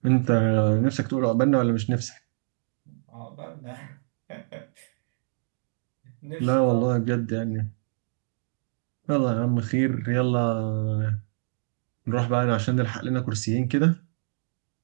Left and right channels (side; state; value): left; silent; digital silence